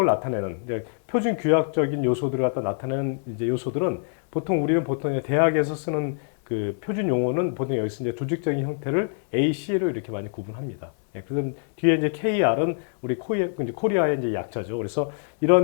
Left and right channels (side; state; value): right; silent; 62 dB below the other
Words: 나타내는 표준 규약적인 요소들을 갖다 나타내는 이제 요소들은 우리는 보통 대학에서 쓰는 그 표준 용어는 보통 여기서 이제 조직적인 형태를 AC로 이렇게 많이 구분합니다. 그래서 뒤에 이제 KR은 우리 코리아의 이제 약자죠. 그래서